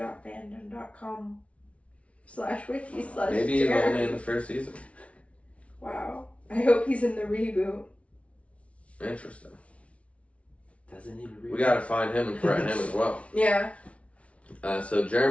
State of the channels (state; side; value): late; right; 0.063 ms